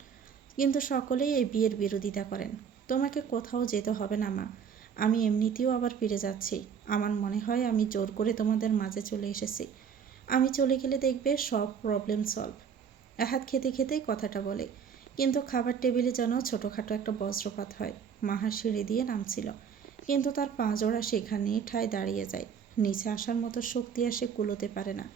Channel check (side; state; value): left; quieter; 7.2 dB